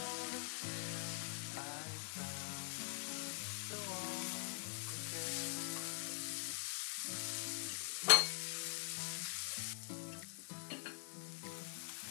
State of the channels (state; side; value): silent; right; digital silence